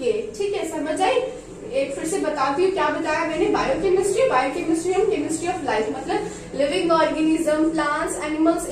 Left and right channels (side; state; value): both; identical; correlation 1.00